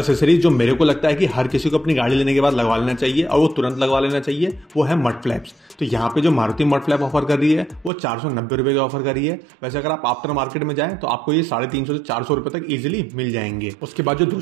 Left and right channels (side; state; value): left; drops out; at 7.9 s